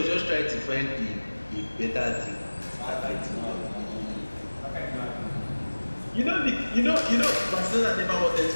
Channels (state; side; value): inverted; both; correlation -1.00